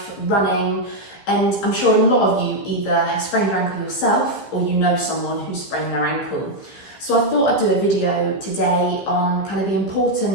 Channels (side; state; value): right; late; 15 ms